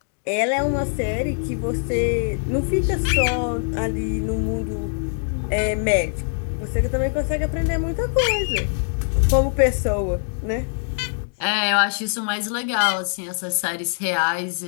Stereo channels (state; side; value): silent; right; 64 dB below the other